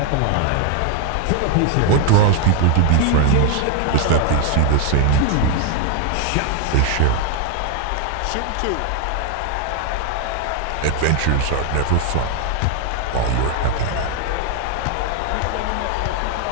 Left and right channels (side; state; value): both; different; correlation 0.00